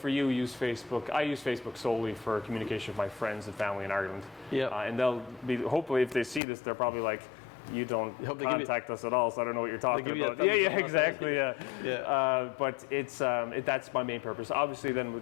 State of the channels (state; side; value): drops out; right; at 6.4 s